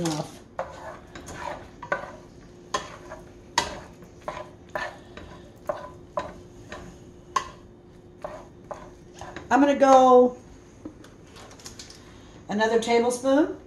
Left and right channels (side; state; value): both; identical; correlation 1.00